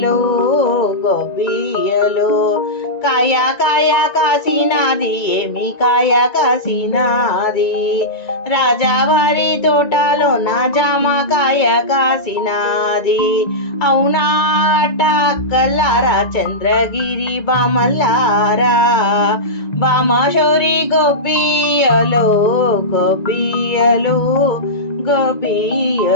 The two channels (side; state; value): right; late; 1.9 ms